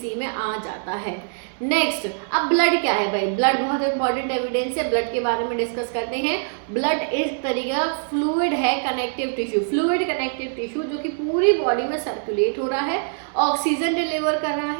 में आ जाता है। नेक्स्ट, अब ब्लड क्या है भाई? ब्लड बहुत इंपॉर्टेंट एविडेंस है, ब्लड के बारे में डिस्कस करते हैं। ब्लड इस तरीका फ्लूइड है, connective tissue, fluid connective tissue जो कि पूरी बॉडी में सर्कुलेट हो रहा है, ऑक्सीजन डिलीवर कर रहा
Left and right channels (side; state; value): left; silent; 63 dB below the other